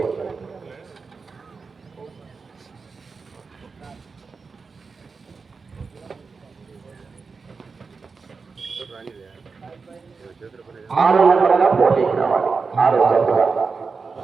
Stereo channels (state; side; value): quieter; left; 4.7 dB